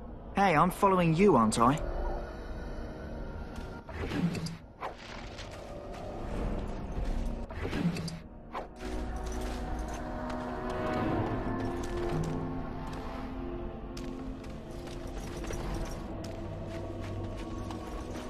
Hey, I'm following you, aren't I?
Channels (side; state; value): both; identical; correlation 1.00